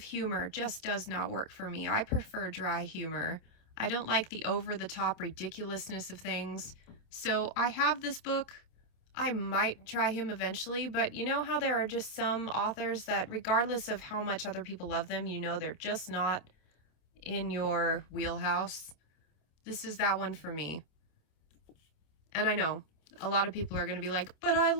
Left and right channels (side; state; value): right; late; 27 ms